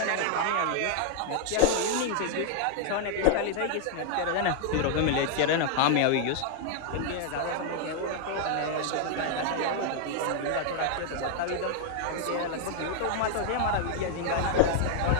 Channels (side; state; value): both; different; correlation 0.00